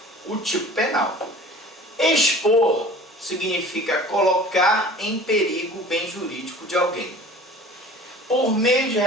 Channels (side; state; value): both; normal; correlation 0.44